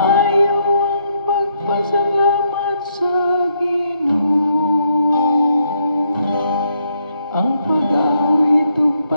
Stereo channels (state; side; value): inverted; both; correlation -0.74